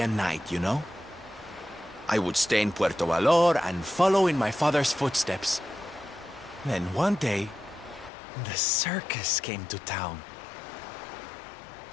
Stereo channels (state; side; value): drops out; right; at 8.1 s